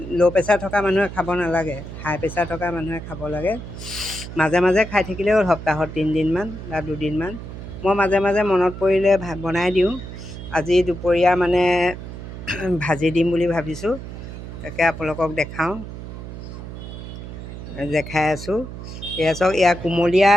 ল' প্ৰেছাৰ থকা মানুহে খাব নালাগে, হাই প্ৰেছাৰ থকা মানুহে খাব লাগে। মাজে মাজে খাই থাকিলেও হ'ল, সপ্তাহত 3 দিনমান বা 2 দিনমান। মই মাজে মাজে মনত পৰিলে বনাই দিওঁ। আজি দুপৰীয়া মানে ভাজি দিম বুলি ভাবিছোঁ। তাকে আপোনালোকক দেখাওঁ, দেখাই আছোঁ। এয়া চাওক, এয়া কুমলীয়া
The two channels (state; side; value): noise; right; hum, 10 dB below the sound